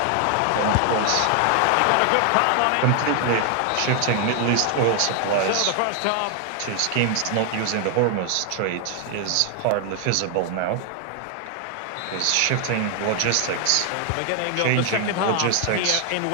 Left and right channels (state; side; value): different; both; correlation 0.00